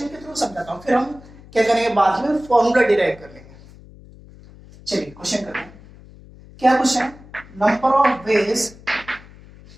के थ्रू समझाता हूं, फिर हम क्या करेंगे बाद में फॉर्मूला डिराइव कर लेंगे। चलिए क्वेश्चन करते हैं। क्या क्वेश्चन है? Number of ways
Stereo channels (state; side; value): noise; left; hum, 21 dB below the sound